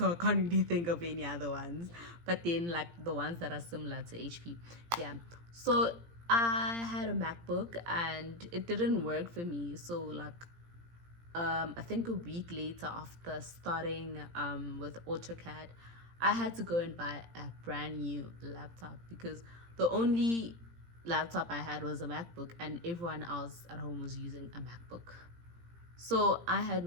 I can't really think of any other ones. But then, like the ones that are similar to HP, yeah. So I had a MacBook, and it didn't work for me. So like, I think a week later after starting with AutoCAD, I had to go and buy a brand new laptop because the only laptop I had was a MacBook, and everyone else at home was using a MacBook. So I had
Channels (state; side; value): late; left; 17 ms